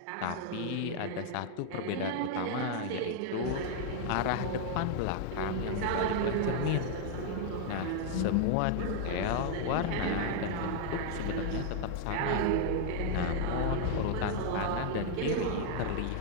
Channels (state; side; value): different; both; correlation 0.00